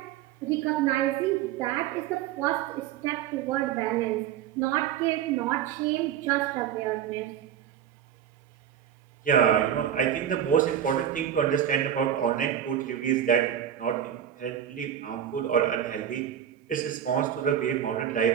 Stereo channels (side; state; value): left; quieter; 9.9 dB